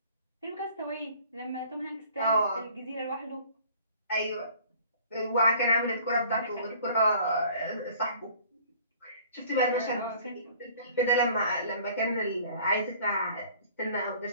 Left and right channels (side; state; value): both; inverted; correlation -0.52